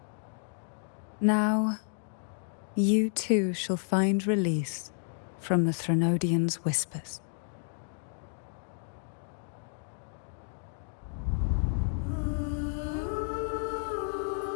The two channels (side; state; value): right; silent; 57 dB below the other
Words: Now, you too shall find release from the Threnodians' whispers.